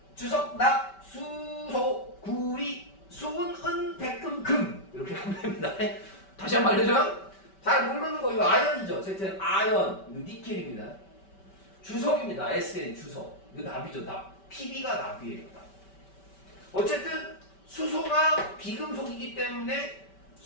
주석, 납, 수소, 구리, 수은, 은, 백금, 금 이렇게 가면 됩니다. 다시 한번 알려줘요? 잘 모르는 거 이거 아연이죠. Z는 아연, 이거 니켈입니다. 주석입니다. SN 주석. 이거 납이죠. 납. PB가 납이에요. 납. 어쨌든 수소가 비금속이기 때문에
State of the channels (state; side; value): late; right; 5.2 ms